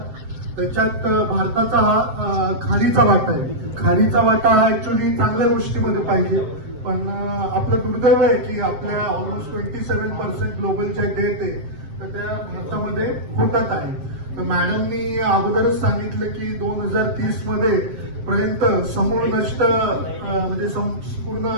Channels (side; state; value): left; late; 7.7 ms